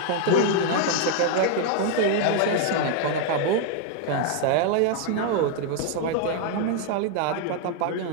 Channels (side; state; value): both; different; correlation 0.00